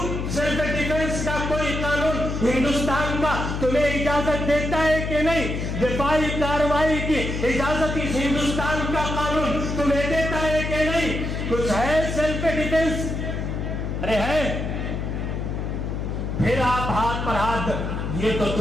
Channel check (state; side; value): noise; left; hum, 3 dB below the sound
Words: سیلف ڈیفنس کا کوئی قانون ہندوستان کا تمہیں اجازت دیتا ہے کہ نہیں؟ دفاعی کارروائی کی اجازت اس ہندوستان کا قانون تمہیں دیتا ہے کہ نہیں؟ کچھ ہے سیلف ڈیفنس؟ ارے ہے؟ پھر آپ ہاتھ پر ہاتھ، یہ تو